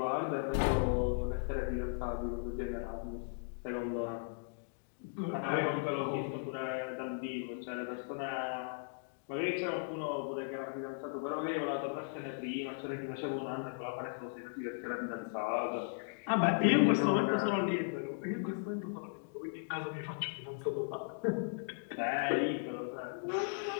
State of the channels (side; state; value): right; silent; digital silence